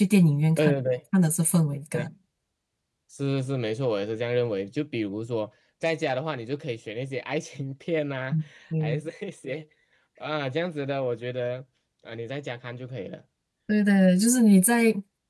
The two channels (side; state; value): both; identical; correlation 1.00